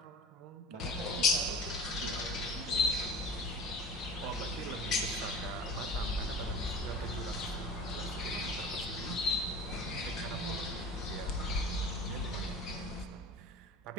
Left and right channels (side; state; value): both; normal; correlation 0.38